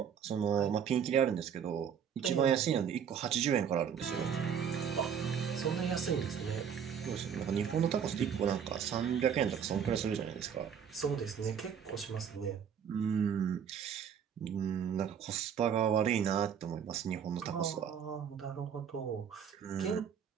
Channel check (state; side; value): quieter; left; 7.8 dB